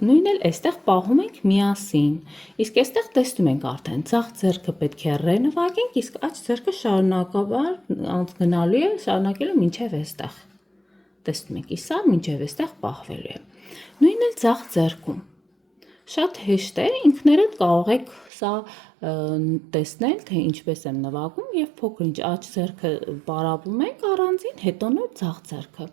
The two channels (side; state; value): left; drops out; at 18.3 s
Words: նույնն էլ այստեղ պահում ենք միասին, իսկ այստեղ տեսնում ենք արդեն, ցախ ձեռքը պետք է ռե նվագենք, իսկ աջ ձեռքը շարունակաբար գնալու է, շարունակելու մինչև այստեղ, տեսնում եք, իսա մինչև այստեղ պահվելու է, նույնն էլ ցախ ձեռքում, շատ հեշտ է, ինքներդ կարող եք սա տեսնել, թե ինչպես եմ նվագում և փոքր-ինչ աջ ձեռքը պարապում ենք առանձին, հետո նոր ցախ ձեռքը,